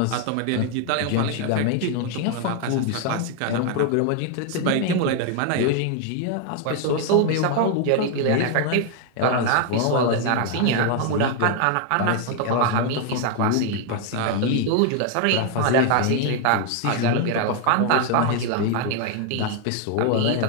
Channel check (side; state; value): both; different; correlation 0.00